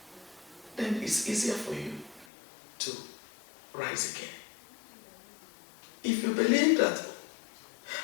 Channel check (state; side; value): drops out; right; at 2.2 s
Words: then it's easier for you to rise again. If you believe that